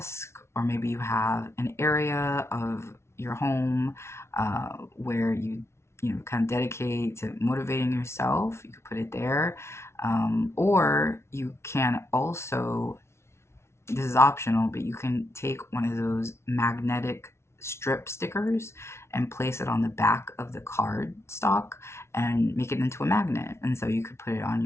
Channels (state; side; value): late; right; 0.13 ms